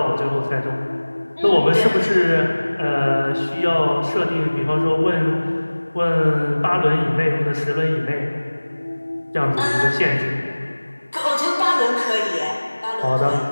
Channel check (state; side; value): inverted; both; correlation -1.00